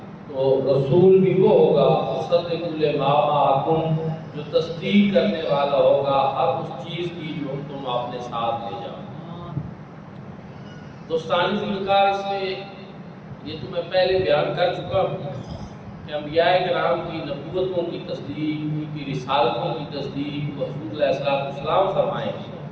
تو رسول بھی وہ ہوگا مصدق لما معکم، جو تصدیق کرنے والا ہوگا ہر اس چیز کی جو تم اپنے ساتھ لے جاؤ۔ دوستانی ذوالفقار، اس میں یہ تو میں پہلے بیان کر چکا ہوں کہ انبیاء کرام کی نبوتوں کی تصدیق، ان کی رسالتوں کی تصدیق حضور علیہ السلام فرمائیں گے،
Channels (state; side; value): identical; both; correlation 1.00